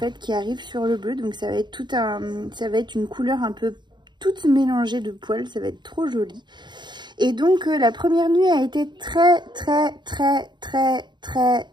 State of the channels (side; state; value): left; late; 0.22 ms